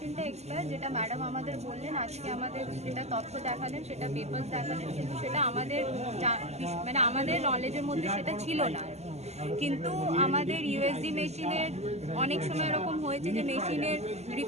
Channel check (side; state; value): left; late; 0.32 ms